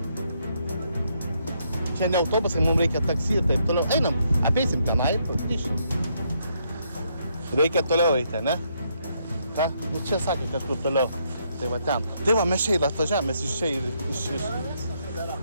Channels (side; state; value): both; inverted; correlation -0.74